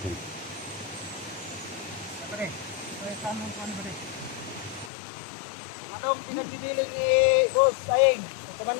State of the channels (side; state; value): right; drops out; at 4.9 s